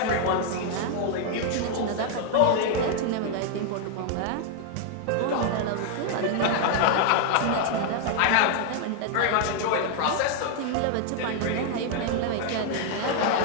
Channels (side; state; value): both; different; correlation 0.00